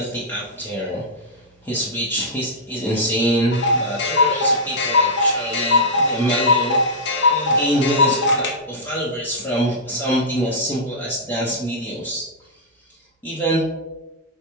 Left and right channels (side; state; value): both; normal; correlation -0.11